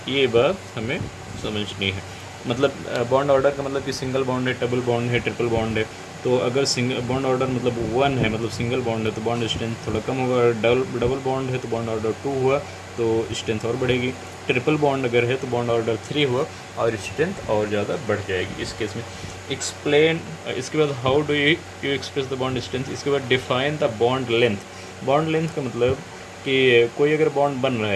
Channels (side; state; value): both; identical; correlation 1.00